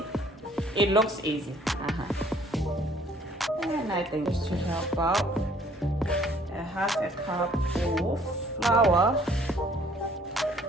It looks easy. And I think just to help out, I have a cup of flour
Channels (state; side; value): normal; both; correlation 0.59